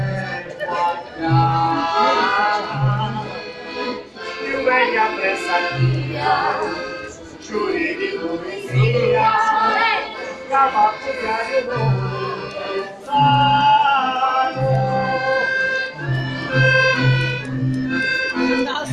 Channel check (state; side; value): identical; both; correlation 1.00